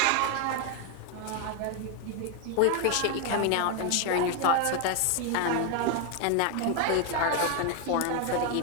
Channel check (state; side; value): different; both; correlation 0.01